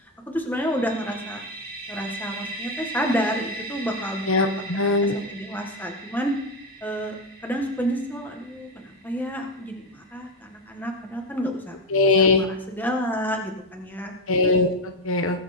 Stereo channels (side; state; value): both; normal; correlation 0.13